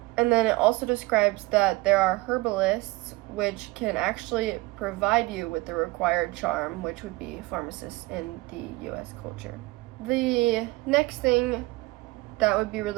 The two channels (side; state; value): left; quieter; 22.2 dB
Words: And then it also describes that there are herbalists which can actually provide you with the required charm, which would be pharmacists in the US culture. The next thing that would be